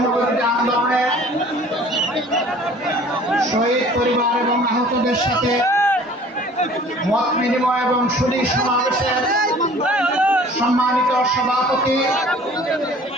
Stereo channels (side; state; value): both; normal; correlation 0.50